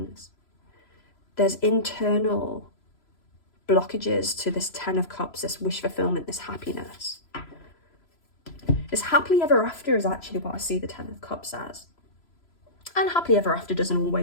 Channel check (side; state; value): right; late; 3.0 ms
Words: There's internal blockages to this Ten of Cups, this wish fulfillment, this happiness. This happily ever after is actually what I see the Ten of Cups as. And happily ever after doesn't